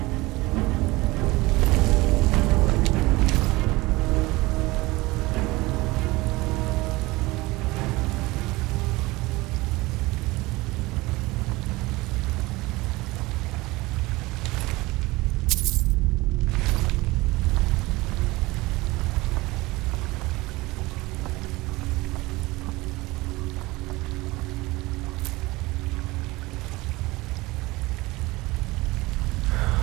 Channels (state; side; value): quieter; left; 21.1 dB